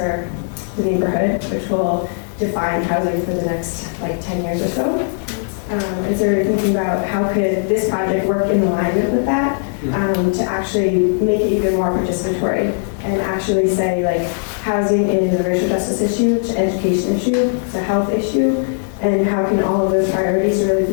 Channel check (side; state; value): right; silent; 67 dB below the other